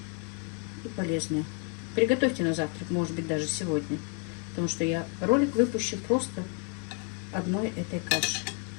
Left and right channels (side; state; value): right; quieter; 34.4 dB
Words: и полезная. Приготовьте на завтрак, может быть, даже сегодня. Потому что я ролик выпущу просто одной этой каши.